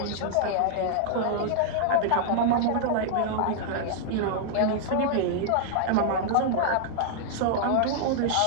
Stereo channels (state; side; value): different; both; correlation -0.01